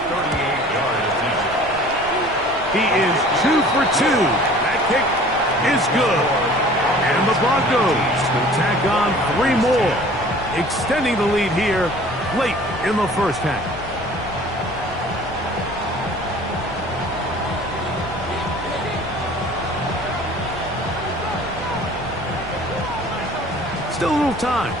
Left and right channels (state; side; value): noise; left; rumble, 17 dB below the sound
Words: attempt. He is 2 for 2. That kick is good. And the Broncos will tack on 3 more, extending the lead here late in the 1st half. Still a little time.